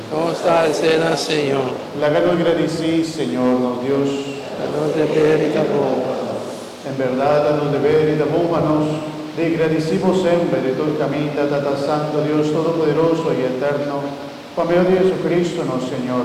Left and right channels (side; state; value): both; identical; correlation 1.00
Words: no está escena, Señor. La gano agradecí, Señor, nos Dios. A nos deber y amor. En verdad, a nos deber y nos de agradecimos siempre de tu camino, Tata Santo Dios Todopoderoso y Eterno, por medio de Jesucristo, nuestro